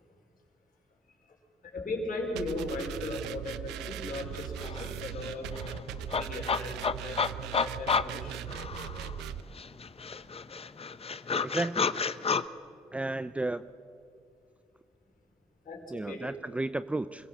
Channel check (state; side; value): normal; both; correlation 0.38